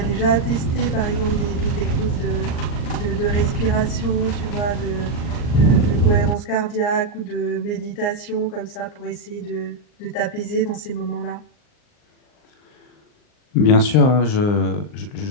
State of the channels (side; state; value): right; late; 39 ms